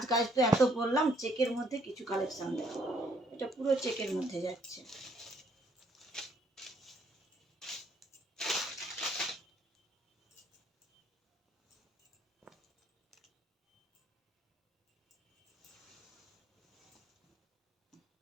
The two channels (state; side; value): normal; both; correlation 0.67